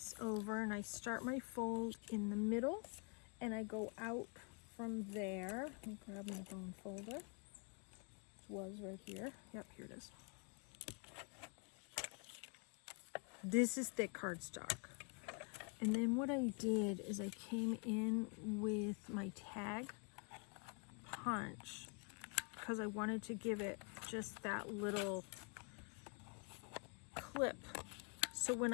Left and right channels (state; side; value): quieter; right; 38.4 dB